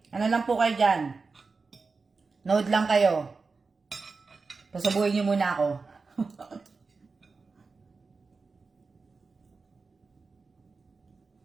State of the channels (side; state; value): left; quieter; 4.3 dB